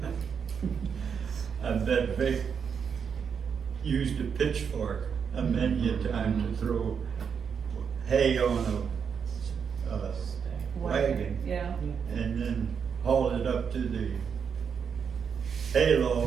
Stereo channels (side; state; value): left; quieter; 6.8 dB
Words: I bet Vic used a pitchfork a many a time to throw hay on a wagon Yeah. and then haul it up to the